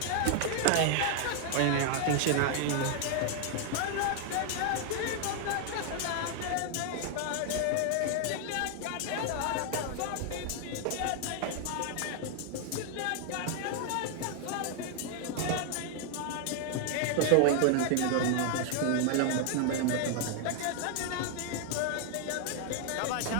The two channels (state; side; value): different; both; correlation 0.00